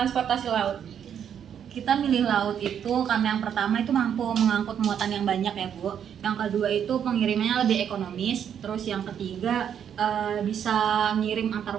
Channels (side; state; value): left; quieter; 8.7 dB